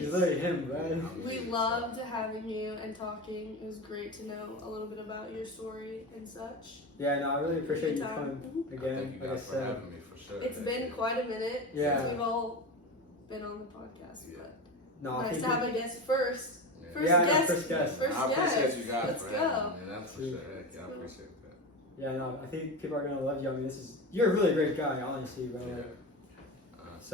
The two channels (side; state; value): both; normal; correlation 0.24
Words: literally him, Yeah, right? I'm We me, loved so. having you and talking. It was great to know a little bit about your story and such. Yeah, no, I really appreciate you Good time. coming again. Thank you Like I guys for said, having me for sure. It's Thank been you. quite a minute Yeah. since we've all been on the podcast, Yeah. but no, I nice think to have a guest first. Yeah. First Yeah, I know, guest. first guest. First I appreciate guest. you guys Let's for go. having me. That's for Sweet. sure. Yeah, I appreciate that. yeah, no, I think people are gonna love you. I mean, you're a really great guy, honestly, bro. Yeah.